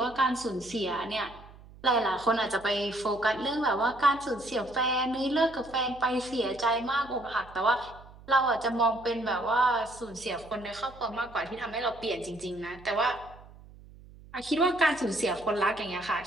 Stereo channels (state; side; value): noise; right; hum, 21 dB below the sound